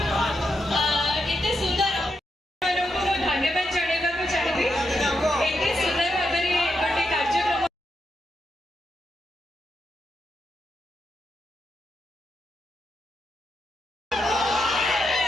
ଏତେ ସୁନ୍ଦର ଆପଣମାନଙ୍କୁ ମୁଁ ଧନ୍ୟବାଦ ଜଣାଇବାକୁ ଚାହିଁବି ଏତେ ସୁନ୍ଦର ଭାବରେ ଗୋଟେ କାର୍ଯ୍ୟକ୍ରମ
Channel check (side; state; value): both; normal; correlation 0.84